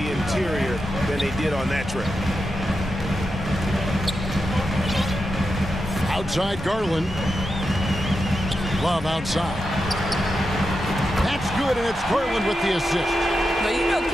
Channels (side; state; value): both; normal; correlation 0.88